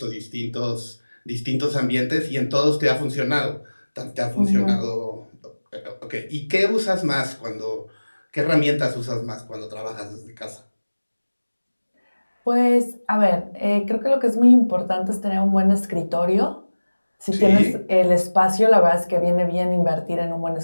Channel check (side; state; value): both; inverted; correlation -1.00